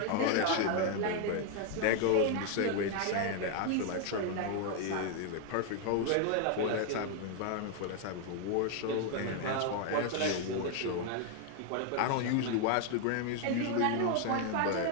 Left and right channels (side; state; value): both; different; correlation 0.00